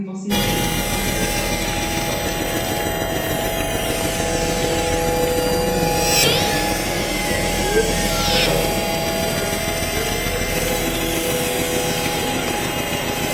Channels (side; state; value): both; identical; correlation 1.00